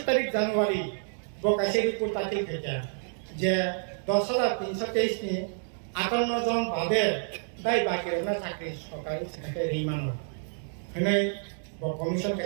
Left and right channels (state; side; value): silent; left; digital silence